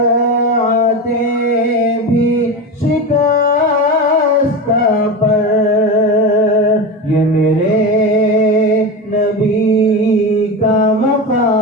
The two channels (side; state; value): both; normal; correlation 0.22